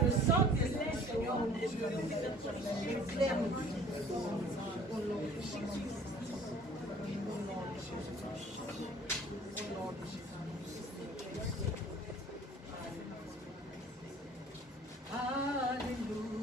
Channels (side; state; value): both; normal; correlation 0.51